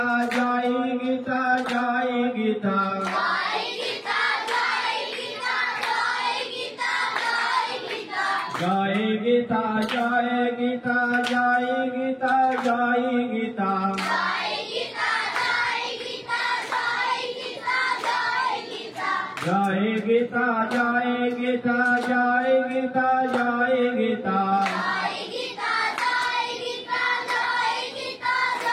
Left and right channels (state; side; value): identical; both; correlation 1.00